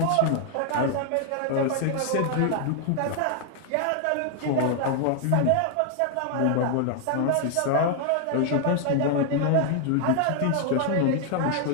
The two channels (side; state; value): both; different; correlation 0.00